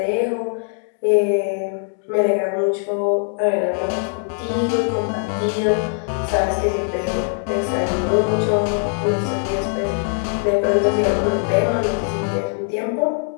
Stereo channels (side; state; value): right; silent; 60 dB below the other